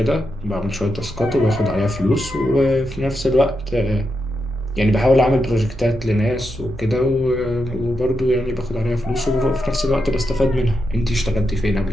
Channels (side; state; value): both; normal; correlation 0.85